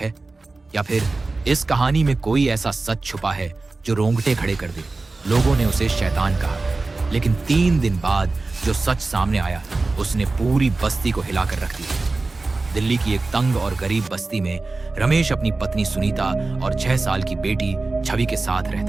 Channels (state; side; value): quieter; left; 3.5 dB